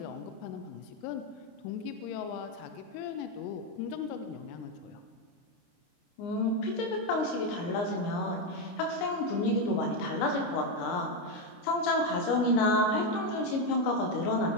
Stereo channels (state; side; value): late; right; 29 ms